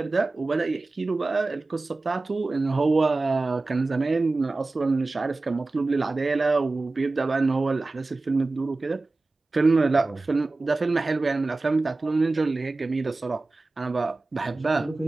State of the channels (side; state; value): left; quieter; 3.4 dB